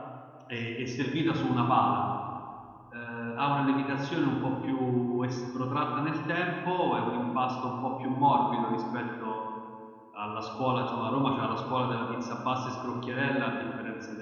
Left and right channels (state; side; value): identical; both; correlation 1.00